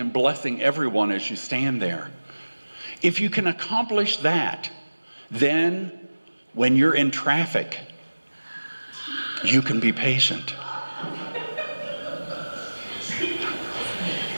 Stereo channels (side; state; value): both; inverted; correlation -1.00